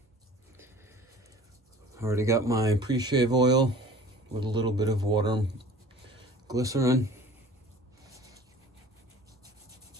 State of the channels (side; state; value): both; normal; correlation 0.45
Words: Already got my pre-shave oil with a little bit of water and glycerin.